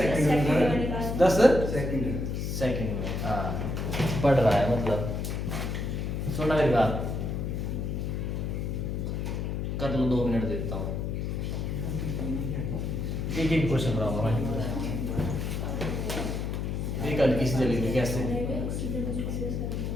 10 सेकंड सेकंड में, हाँ पढ़ रहा है मतलब। सुनना मेरी बात, कर लो 2 मिनट देता हूँ, एक एक क्वेश्चन कराऊंगा मैं। एक हल्की सी जलेगी कैसे।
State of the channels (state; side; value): noise; left; hum, 2 dB below the sound